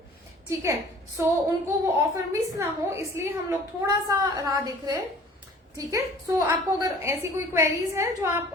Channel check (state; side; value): normal; both; correlation 0.49